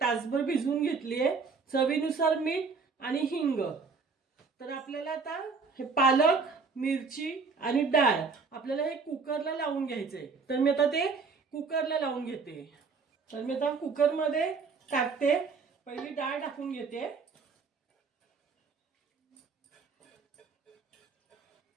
तासभर भिजवून घेतलीये. चवीनुसार मीठ आणि हिंग. तर आपल्याला आता हे पालक, मिरची आणि डाळ आपल्याला हे कुकरला लावून घ्यायचंय. तर मी आता ते कुकरला लावून घेते. तर मी आता कुकरमध्ये टाकते. पहिली डाळ टाकून घेते.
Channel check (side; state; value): left; quieter; 4.8 dB